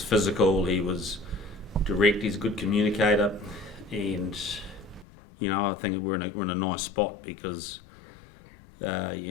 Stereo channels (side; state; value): right; drops out; at 5.1 s